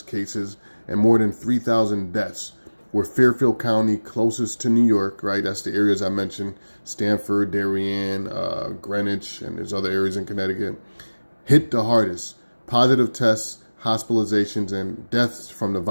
cases and more than 3,000 deaths, where Fairfield County, closest to New York, right, that's the areas I mentioned, Stamford, Darien, Greenwich, and there's other areas in Connecticut, hit the hardest. Positive tests, hospitalizations, and deaths from the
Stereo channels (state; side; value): inverted; both; correlation -1.00